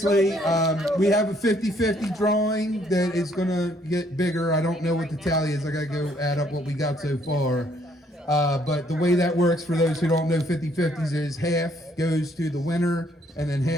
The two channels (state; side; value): normal; both; correlation 0.66